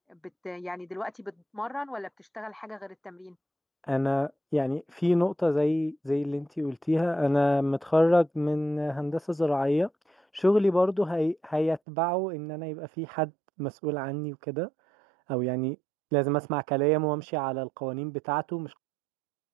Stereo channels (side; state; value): left; drops out; at 11.8 s